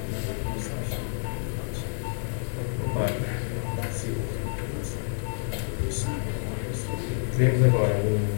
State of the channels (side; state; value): right; silent; digital silence